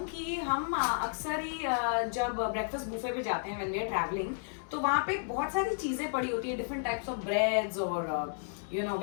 कि हम अक्सर ही जब ब्रेकफास्ट बुफे पे जाते हैं व्हेन वी आर ट्रैवलिंग तो वहाँ पे बहुत सारी चीजें पड़ी होती है, डिफरेंट टाइप्स ऑफ ब्रेड्स और you know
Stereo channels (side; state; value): right; silent; digital silence